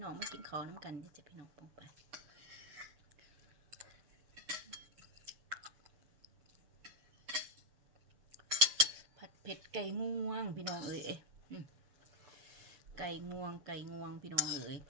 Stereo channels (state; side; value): late; left; 6.9 ms